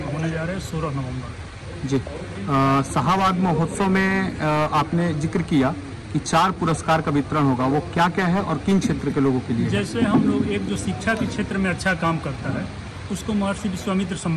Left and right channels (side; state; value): both; identical; correlation 1.00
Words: होने जा रहे हैं 16 नवंबर। जी, शाहाबाद महोत्सव में आपने जिक्र किया कि 4 पुरस्कार का वितरण होगा, वो क्या क्या है और किन क्षेत्र के लोगों के लिए? जैसे हम लोग एक जो शिक्षा के क्षेत्र में अच्छा काम करता है उसको महर्षि विश्वामित्र